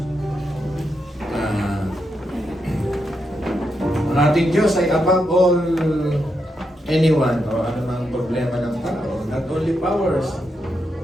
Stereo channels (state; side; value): normal; both; correlation 0.83